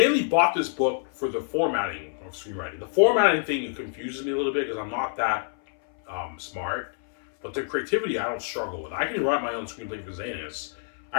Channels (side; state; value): right; silent; 60 dB below the other